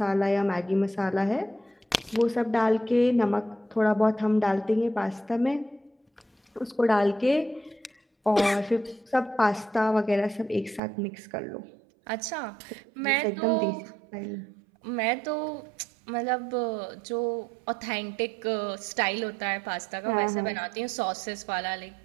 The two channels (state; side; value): drops out; left; at 10.8 s